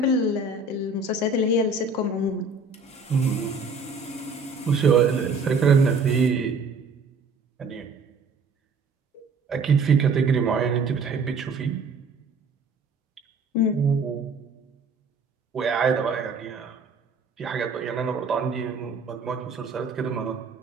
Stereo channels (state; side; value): quieter; left; 3.9 dB